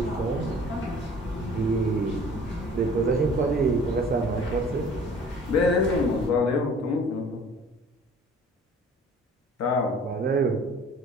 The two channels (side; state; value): both; normal; correlation 0.49